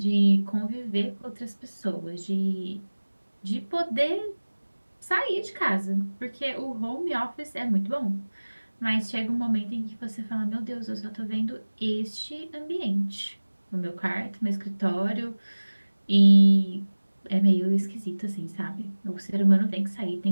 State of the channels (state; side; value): inverted; both; correlation -1.00